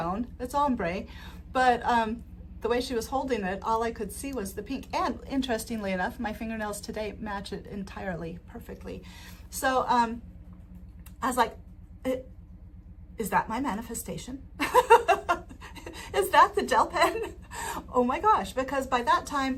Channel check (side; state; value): both; identical; correlation 1.00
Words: it's ombre, but the way she was holding it, all I could see was the pink. And interestingly enough, my fingernails today match it entirely, perfectly. So I was like, is that my manifestation? Is that the gel pen? Oh my gosh, because by that